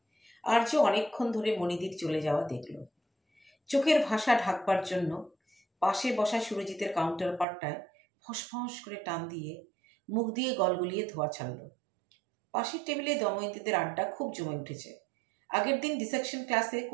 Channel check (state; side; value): drops out; left; at 7.5 s